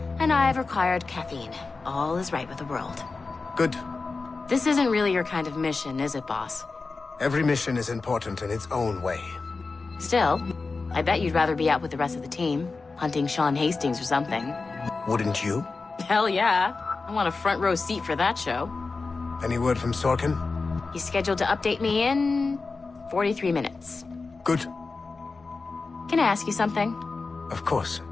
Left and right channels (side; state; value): right; quieter; 4.0 dB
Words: and I've required caffeine. All is right with the world. Good. This isn't really your kind of mission, is it, boss? Every mission is important in its own way. Still, I bet you'd rather be out with the rest of the team, hunting Sean Hastings or something. Wouldn't you? Hell yeah. I want a front row seat for that show. Any word from Sorkin? He's scheduled to update me in 43 minutes. Good. Can I ask you something? Of course.